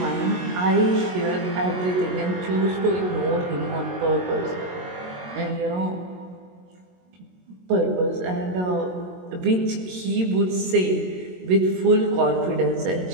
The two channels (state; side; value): late; left; 22 ms